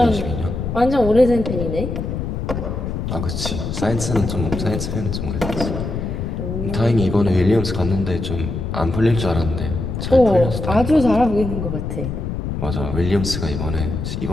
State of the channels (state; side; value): noise; left; rumble, 4 dB below the sound